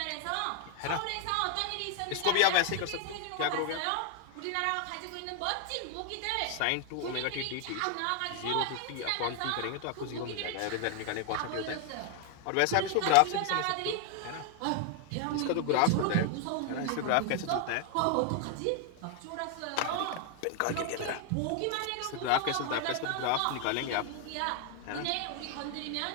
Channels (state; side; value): different; both; correlation 0.00